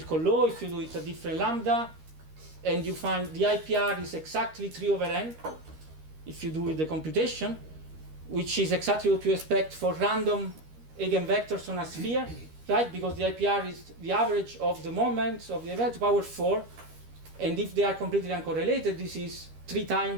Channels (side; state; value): left; late; 13 ms